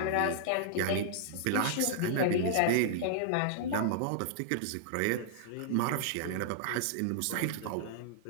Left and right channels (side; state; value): both; different; correlation -0.01